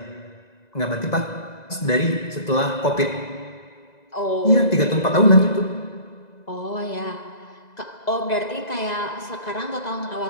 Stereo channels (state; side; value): late; right; 2.0 ms